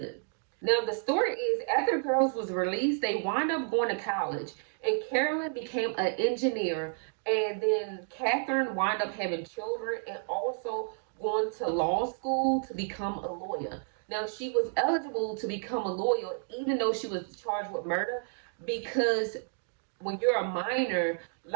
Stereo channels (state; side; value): silent; left; 57 dB below the other